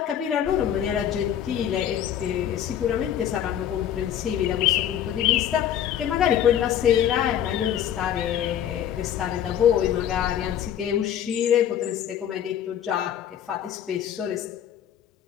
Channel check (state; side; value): quieter; right; 10.1 dB